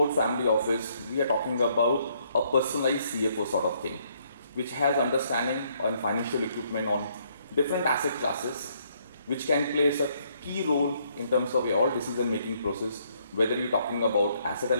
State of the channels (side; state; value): both; inverted; correlation -0.69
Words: family office, we are talking about a personalized CFO sort of thing, which has understanding on financial equipment on different asset classes, which can play a key role in terms of your all decision-making process, whether you're talking about asset